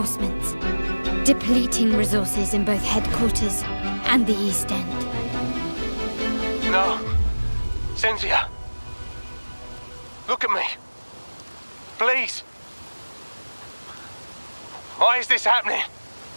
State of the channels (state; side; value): inverted; both; correlation -1.00